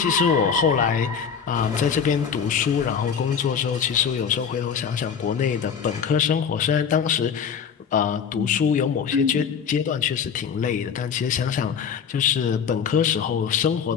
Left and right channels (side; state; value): right; quieter; 7.0 dB